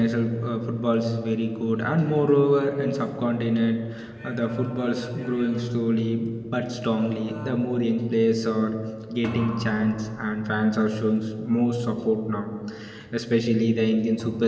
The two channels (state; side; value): identical; both; correlation 1.00